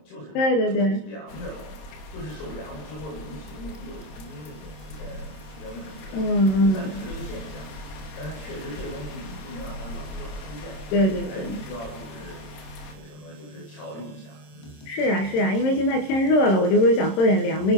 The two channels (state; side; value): late; right; 27 ms